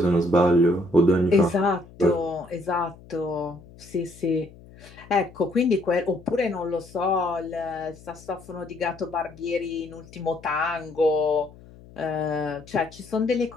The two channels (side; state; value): left; noise; hum, 21 dB below the sound